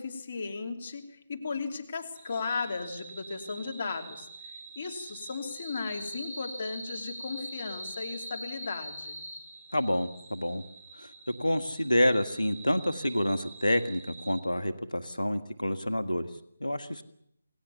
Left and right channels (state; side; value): inverted; both; correlation -0.94